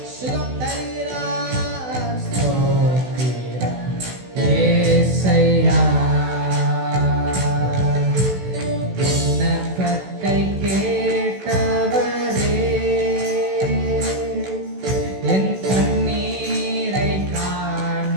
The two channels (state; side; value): late; left; 16 ms